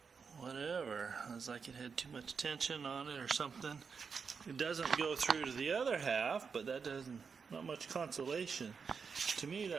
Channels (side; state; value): left; quieter; 5.7 dB